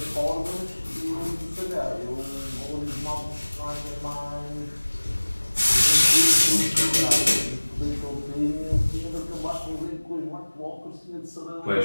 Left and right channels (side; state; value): both; inverted; correlation -1.00